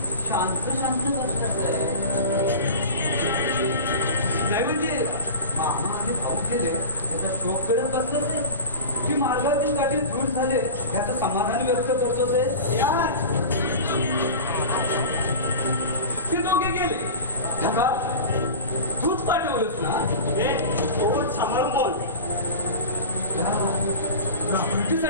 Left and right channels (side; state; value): both; inverted; correlation -0.32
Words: शांत शांत बसलास आहे. नाही म्हणजे मामा आणि भाऊ गेले याचा शोक करत बसलास आहे की मार्गातील काठी दूर झाले याचं समाधान व्यक्त करतोस आहे? यार ते दोघे गेले ढगात तूच पाठवलंस ना तोच सांभाळून बोल